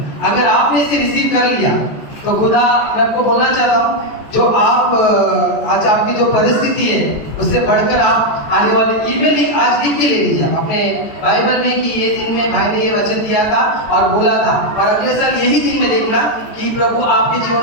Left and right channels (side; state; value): right; late; 14 ms